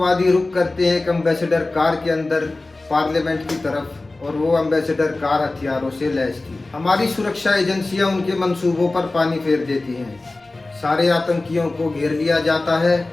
रुक करते हैं एक एम्बेसडर कार के अंदर पार्लियामेंट की तरफ, और वो एम्बेसडर कार हथियारों से लैस थी। हमारी सुरक्षा एजेंसियां उनके मंसूबों पर पानी फेर देती हैं। सारे आतंकियों को घेर लिया जाता है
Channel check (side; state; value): right; quieter; 3.1 dB